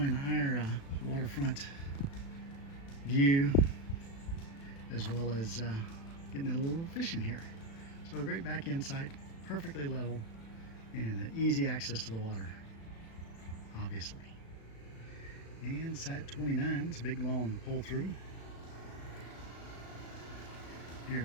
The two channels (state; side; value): late; right; 36 ms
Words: our waterfront view, as well as getting a little fishing here. So a great back end site, perfectly level, and easy access to the water, obviously. And site 29, it's a big long pull through here